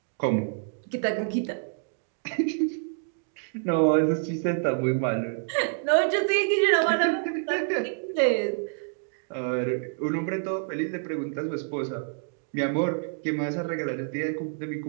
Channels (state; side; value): silent; left; digital silence